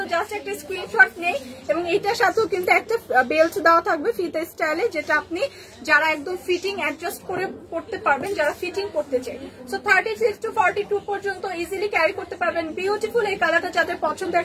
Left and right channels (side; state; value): both; identical; correlation 1.00